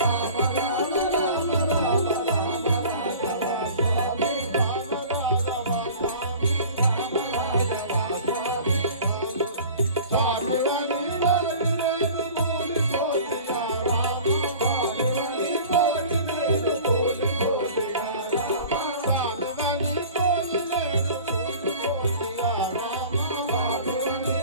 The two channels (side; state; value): both; inverted; correlation -0.42